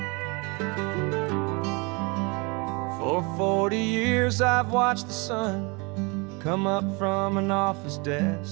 For 40 years I've watched the sun come up from an office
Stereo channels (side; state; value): left; quieter; 29.2 dB